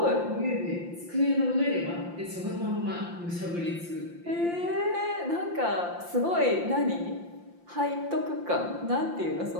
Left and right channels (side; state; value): left; late; 5.8 ms